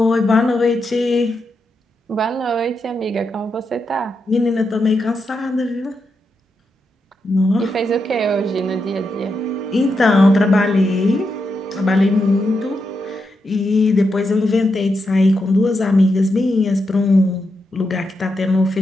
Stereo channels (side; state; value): both; normal; correlation 0.85